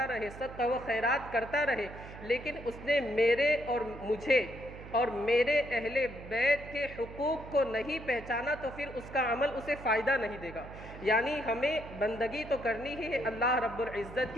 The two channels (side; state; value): right; noise; hum, 14 dB below the sound